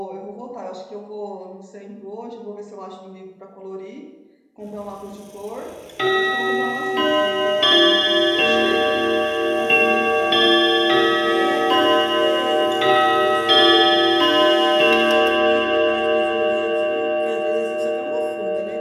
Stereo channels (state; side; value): identical; both; correlation 1.00